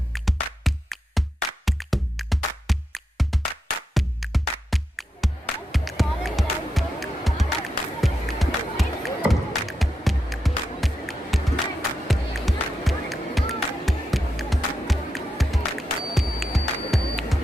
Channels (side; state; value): both; normal; correlation 0.86